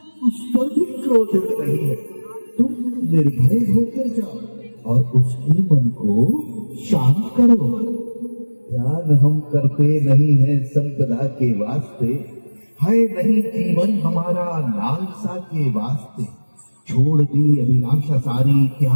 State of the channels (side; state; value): both; inverted; correlation -1.00